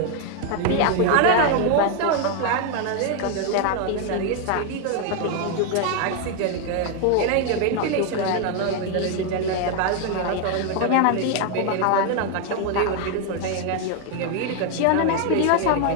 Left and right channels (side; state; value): both; different; correlation 0.01